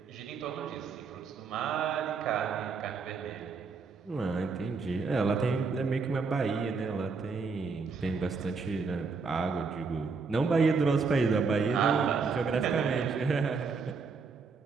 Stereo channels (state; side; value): quieter; left; 4.8 dB